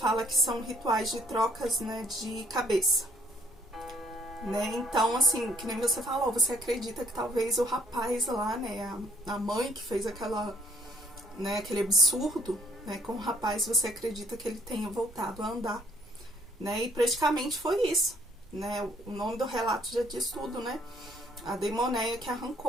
que são rituais de trocas, né, de cabeça. Né? Então, assim, que nem você falou, você acredita que talvez o rapaz lá, né, a mãe que fez né, aquele absurdo, né, com o rapaz, você acredita que ele tenha voltado a andar, né? E praticamente foi isso, né? O nome do relato já diz tudo, né? A demonéia que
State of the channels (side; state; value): both; normal; correlation 0.64